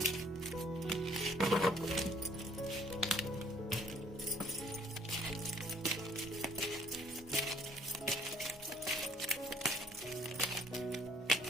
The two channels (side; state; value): both; normal; correlation 0.60